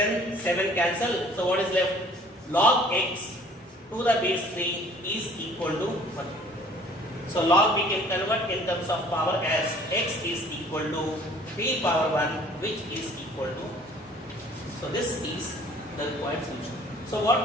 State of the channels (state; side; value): normal; both; correlation 0.54